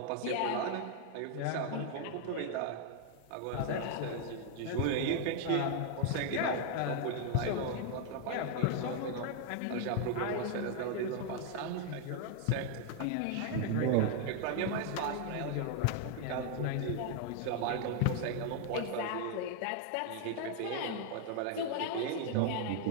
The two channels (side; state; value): both; different; correlation 0.00